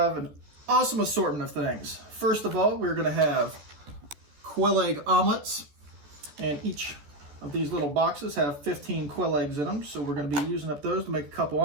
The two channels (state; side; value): late; left; 14 ms